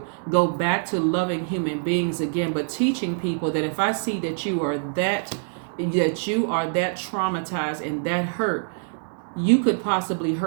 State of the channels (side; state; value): left; silent; digital silence